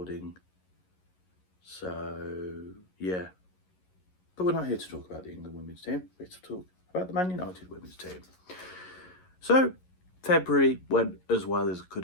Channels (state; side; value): late; right; 11 ms